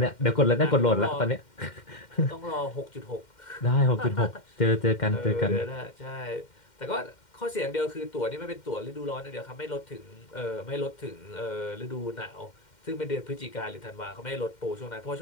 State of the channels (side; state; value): right; late; 2.1 ms